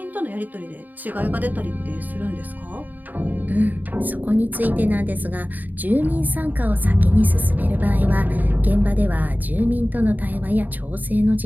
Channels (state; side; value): late; left; 0.085 ms